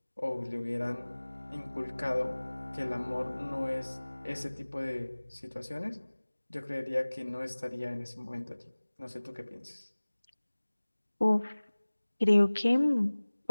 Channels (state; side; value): inverted; both; correlation -1.00